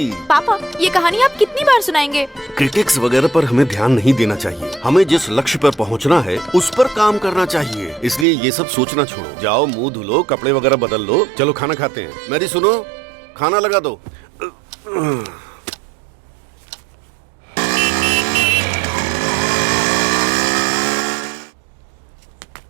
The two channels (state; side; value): drops out; left; at 8.2 s